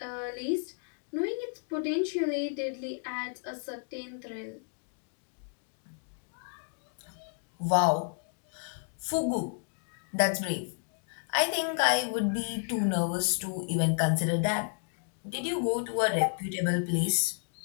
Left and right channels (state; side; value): silent; right; 57 dB below the other